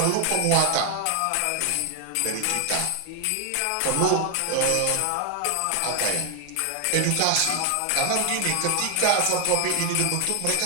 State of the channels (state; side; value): different; both; correlation 0.00